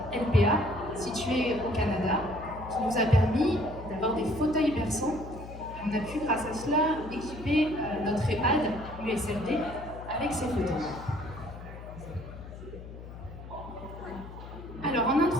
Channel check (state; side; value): noise; left; hum, 13 dB below the sound